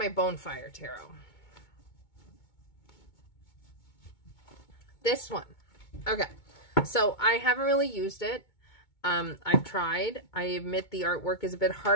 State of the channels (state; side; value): late; right; 2.2 ms